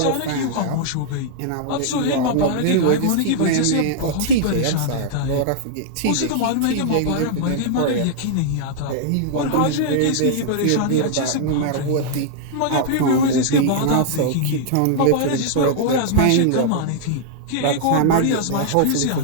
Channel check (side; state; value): both; different; correlation -0.01